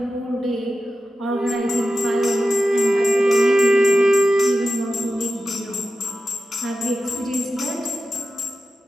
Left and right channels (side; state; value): both; normal; correlation 0.92